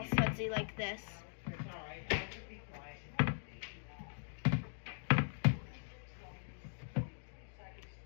sudsy like this.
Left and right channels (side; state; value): right; silent; digital silence